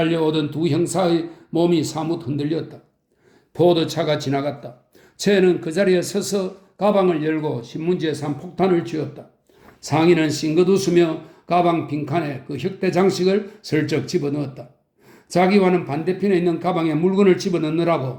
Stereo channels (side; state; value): both; identical; correlation 1.00